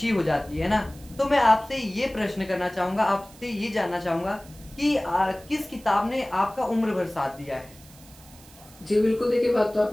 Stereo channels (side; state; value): right; noise; hiss, 23 dB below the sound